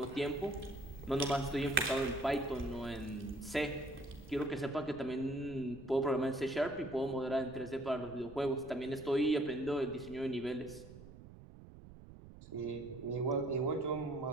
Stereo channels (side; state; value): right; noise; rumble, 17 dB below the sound